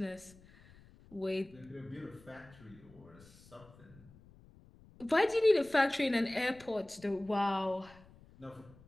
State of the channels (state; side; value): noise; left; rumble, 24 dB below the sound